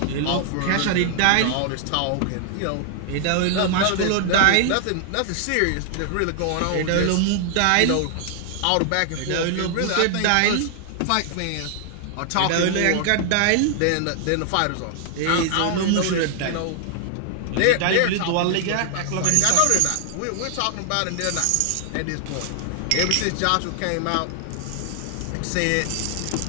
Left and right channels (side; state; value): both; different; correlation 0.00